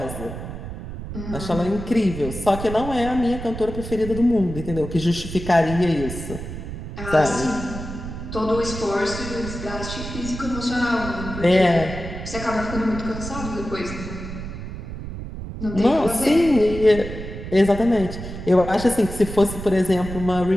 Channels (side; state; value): right; noise; rumble, 9 dB below the sound